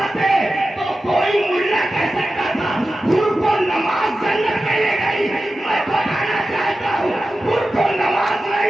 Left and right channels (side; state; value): both; normal; correlation 0.93